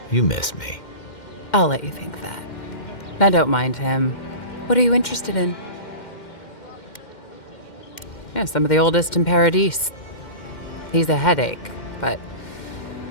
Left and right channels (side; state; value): right; late; 2.1 ms